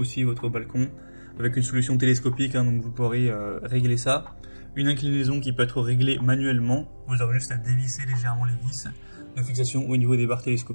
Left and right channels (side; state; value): both; inverted; correlation -1.00